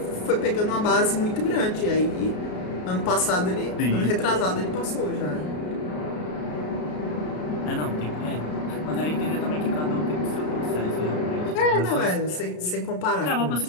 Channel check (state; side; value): late; right; 33 ms